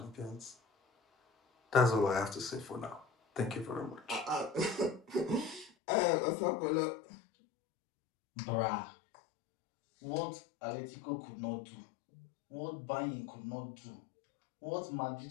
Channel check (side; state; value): right; drops out; at 5.7 s